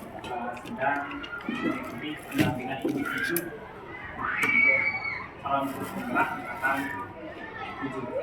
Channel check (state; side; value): identical; both; correlation 1.00